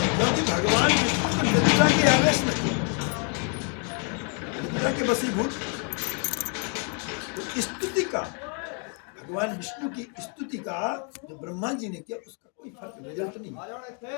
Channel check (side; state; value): right; quieter; 40.0 dB